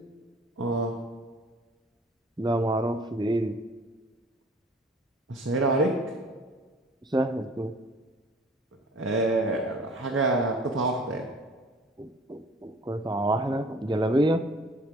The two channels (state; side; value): normal; both; correlation 0.49